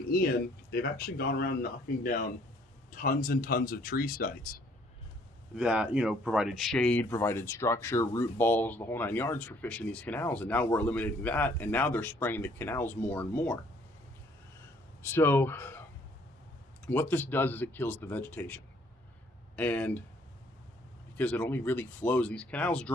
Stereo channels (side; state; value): both; normal; correlation 0.62